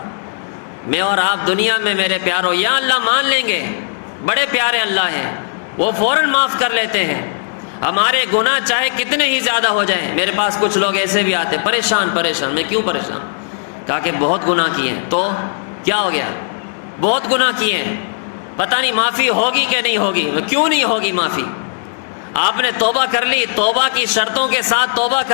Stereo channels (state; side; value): silent; right; digital silence